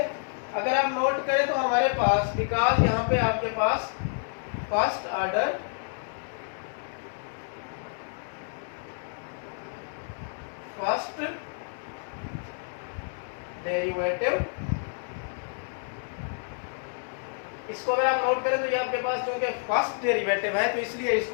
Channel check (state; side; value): silent; right; digital silence